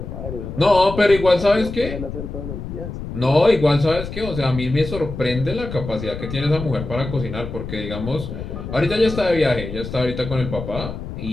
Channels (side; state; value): left; noise; rumble, 8 dB below the sound